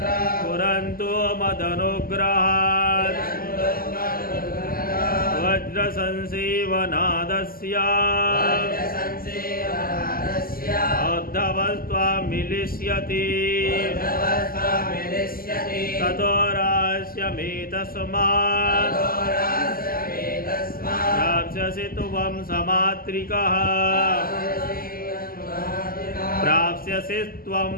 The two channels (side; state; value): right; late; 0.42 ms